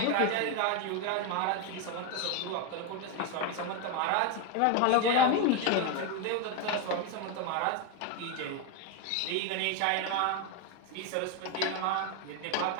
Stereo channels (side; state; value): both; different; correlation 0.02